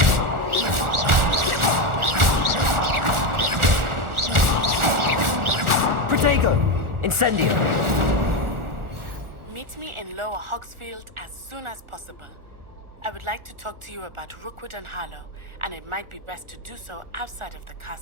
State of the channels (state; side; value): late; left; 1.4 ms